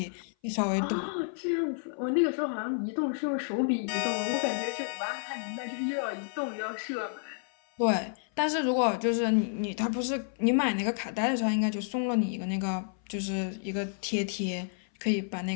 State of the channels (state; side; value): silent; right; 56 dB below the other